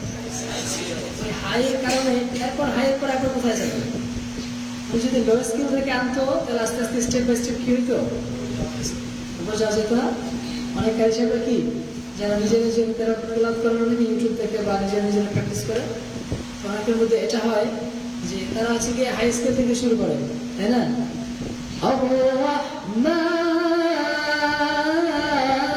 ওই হাইয়ের কারণে এরপর হাইয়ের পর একবার কোথায় যাবে? উনি যদি লো স্কেল থেকে আনতো তাহলে আস্তে আস্তে স্টেপ বাই স্টেপ কি হইতো? বোঝা যেত না। অনেক কারি সাহেবরা কি যারা নিজের তেলাওয়াত করেন অনেকে ইউটিউব থেকে বা নিজের প্র্যাকটিস করে, তো অনেকের মধ্যে এটা হয় যে তারা হচ্ছে কি হাই স্কেল থেকে শুরু করে, তাই না?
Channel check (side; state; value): both; identical; correlation 1.00